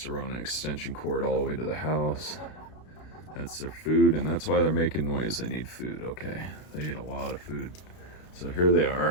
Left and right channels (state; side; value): late; right; 32 ms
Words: to run an extension cord all the way to the house. That's their food, and that's why they're making noise. They need food. Okay, they eat a lot of food. So here they